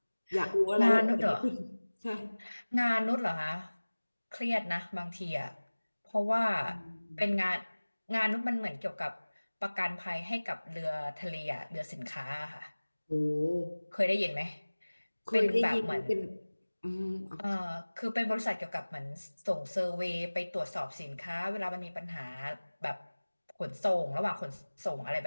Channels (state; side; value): inverted; both; correlation -1.00